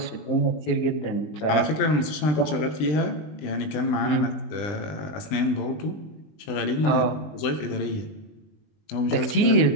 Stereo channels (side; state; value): right; late; 20 ms